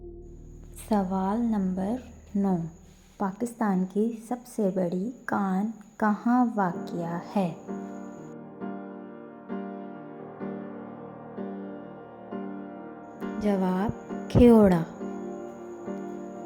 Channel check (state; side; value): identical; both; correlation 1.00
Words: सवाल नंबर 9, पाकिस्तान की सबसे बड़ी कान कहाँ वाक़या है? जवाब खेओड़ा।